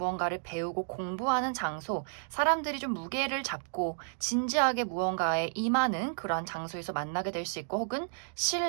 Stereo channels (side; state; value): left; silent; digital silence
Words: 배우고 공부하는 장소, 사람들이 좀 무게를 잡고 진지하게 무언가에 임하는 그러한 장소에서 만나게 될 수 있고 혹은